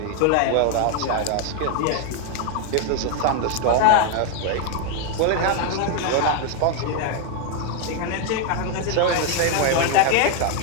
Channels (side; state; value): both; different; correlation 0.01